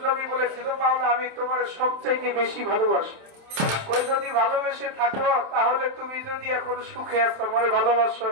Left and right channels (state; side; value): late; left; 27 ms